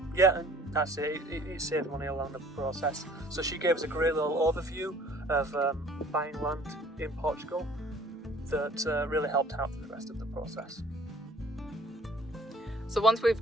Yeah, and that's it. It saved money along the process. So she gave us a great little overview of buying land in Portugal that really helped out for the rest of the process. So once we've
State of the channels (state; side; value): normal; both; correlation 0.53